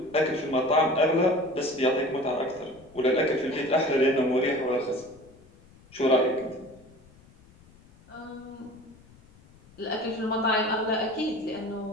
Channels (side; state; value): left; noise; rumble, 26 dB below the sound